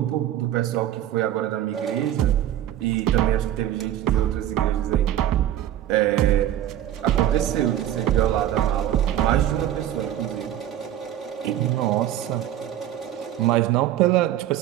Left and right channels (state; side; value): quieter; left; 11.8 dB